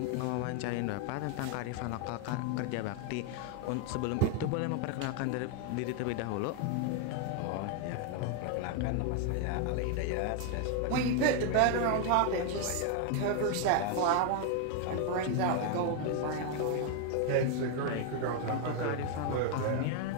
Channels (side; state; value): both; different; correlation 0.01